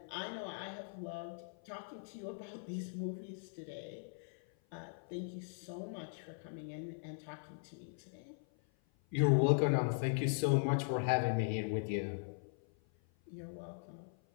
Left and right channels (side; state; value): right; silent; 51 dB below the other